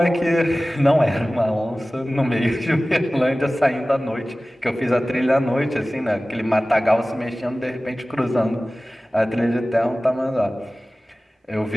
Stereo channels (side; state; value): both; normal; correlation 0.97